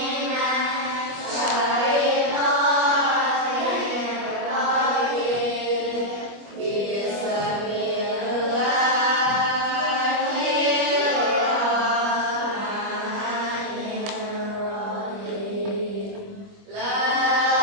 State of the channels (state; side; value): late; left; 25 ms